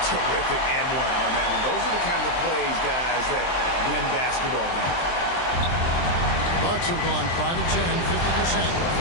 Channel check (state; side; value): late; right; 23 ms